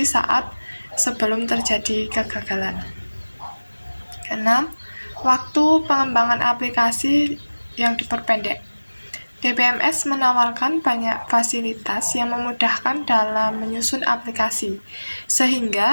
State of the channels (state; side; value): inverted; both; correlation -1.00